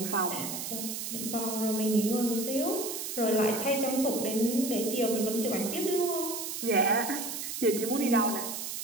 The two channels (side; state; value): right; noise; hiss, 5 dB below the sound